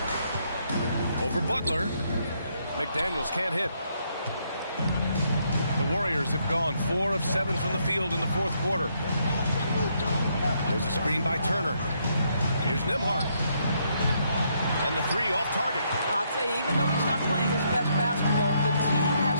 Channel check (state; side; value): inverted; both; correlation -0.74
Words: Over Butler. McDaniels can't hit. The Warriors have gone 4 of 7 from the field in the fourth quarter. There's a screen by Turner. Here's Nembhard. And the 3 off target. I'll tell you, even though he's not playing his best basketball, the team has